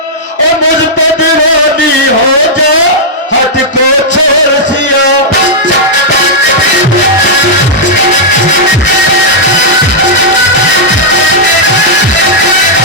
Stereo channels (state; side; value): normal; both; correlation -0.08